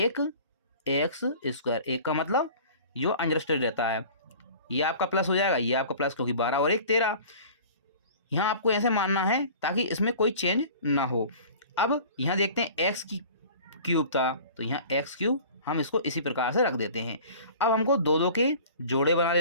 एक का मतलब जो अंडरस्टूड रहता है, ये आपका प्लस हो जाएगा, ये आपका प्लस, क्योंकि 12 और 1 13। यहाँ आपको ऐसे मानना है ताकि इसमें कोई चेंज ना हो। अब यहाँ देखते हैं एक्स की क्यूब था, तो यहाँ x³ हम इसको इसी प्रकार से रख देते हैं। अब हमको दो दो के जोड़े बना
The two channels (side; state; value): both; inverted; correlation -0.43